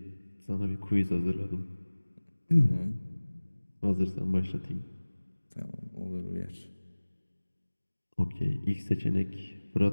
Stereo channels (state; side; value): inverted; both; correlation -1.00